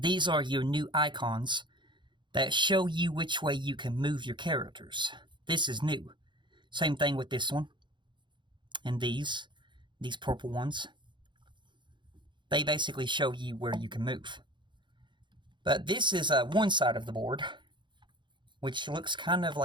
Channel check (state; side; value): late; left; 0.23 ms